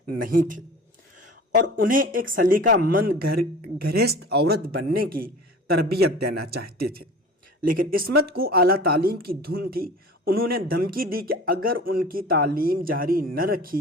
نہیں تھے اور انہیں ایک سلیقہ مند گھرست عورت بننے کی تربیت دینا چاہتے تھے۔ لیکن عصمت کو اعلیٰ تعلیم کی دھن تھی۔ انہوں نے دھمکی دی کہ اگر ان کی تعلیم جاری نہ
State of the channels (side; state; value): both; normal; correlation 0.40